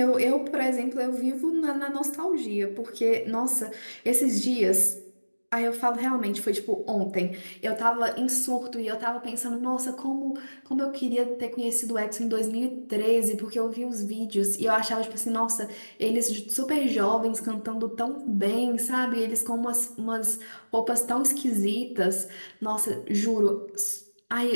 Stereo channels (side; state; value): both; inverted; correlation -1.00